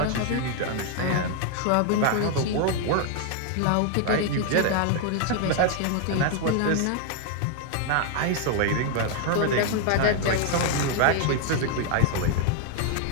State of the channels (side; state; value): both; different; correlation 0.00